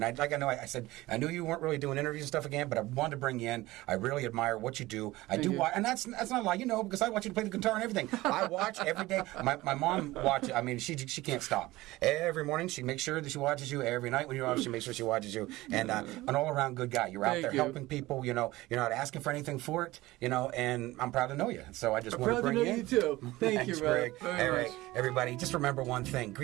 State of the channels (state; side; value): quieter; left; 18.6 dB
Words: I said, I knew you weren't really doing interviews and stuff again, but I wanted to bring you in. I really admire what you do. I do you. watch, and that's not a lie, because I watch you play the guitar and everything. I watch every day. My mom watches. I mean, she can't stop. Every morning, she makes sure that she watches you. Every night when you're off, she makes sure she watches you. And an all-around good guy. You're out Thank there you. helping people. You're not asking for anything for it. And I'm proud to know you. So I just I'm want to proud to bring know you you in. too. Thank Thanks, you, Rob. Greg. Very All right, much. everybody, just remember one thing.